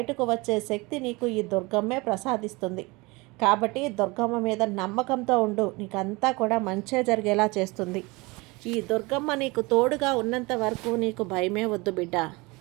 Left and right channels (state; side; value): quieter; left; 24.7 dB